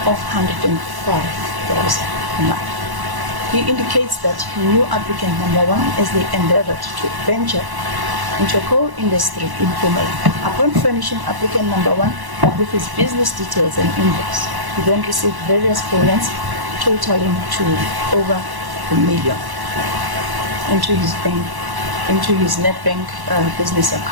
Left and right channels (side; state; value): left; late; 1.1 ms